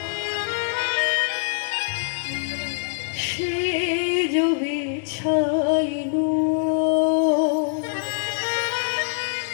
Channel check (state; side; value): silent; right; digital silence